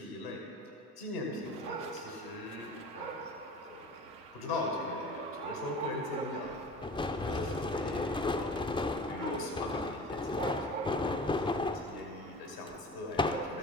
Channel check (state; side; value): normal; both; correlation 0.38